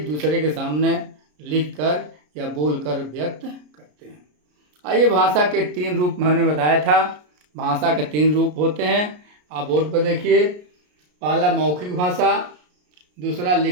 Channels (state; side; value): late; left; 33 ms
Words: दूसरे के सामने लिखकर या बोलकर व्यक्त करते हैं। आइए, भाषा के 3 रूप मैंने बताया था। भाषा के 3 रूप होते हैं। आप बोर्ड पर देखिए। पहला मौखिक भाषा, दूसरा